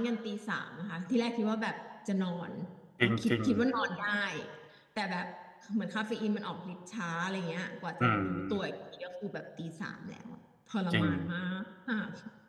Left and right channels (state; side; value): identical; both; correlation 1.00